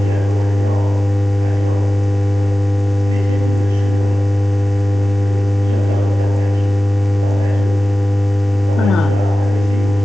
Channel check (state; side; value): normal; both; correlation 0.96